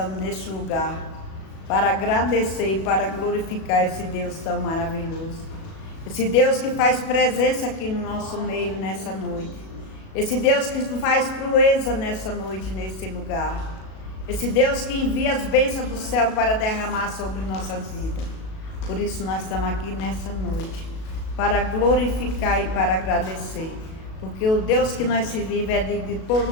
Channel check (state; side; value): late; right; 37 ms